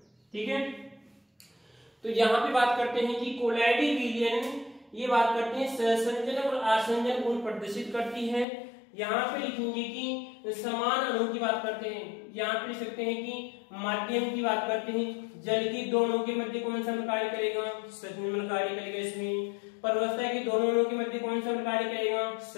ठीक है, तो यहां पे बात करते हैं कि कोलॉइडी विलयन, ये बात करते हैं सहसंजन और आसंजन गुण प्रदर्शित करती है। यहाँ पे लिखेंगे कि समान अणु की बात करते हैं, यहाँ पे लिख सकते हैं कि माध्यम की बात करते हैं। जल की दोनों के मध्य कौन सा कार्य करेगा, सस्मिमल कार्य करेगा। इसमें परवस्था की दोनों अणुओं के मध्य कौन सा कार्य करेगा,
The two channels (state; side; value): drops out; right; at 8.5 s